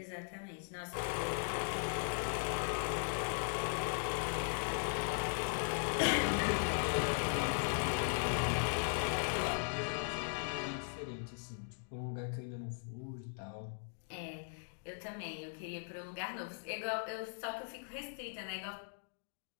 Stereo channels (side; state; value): right; silent; digital silence